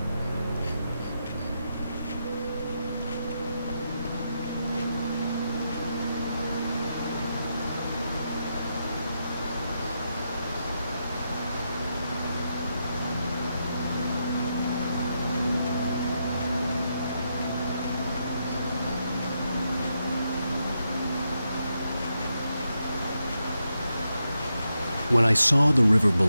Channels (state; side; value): inverted; both; correlation -0.84